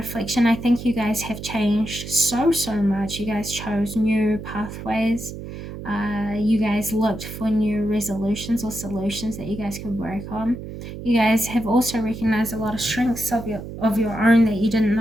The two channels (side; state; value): right; noise; hum, 10 dB below the sound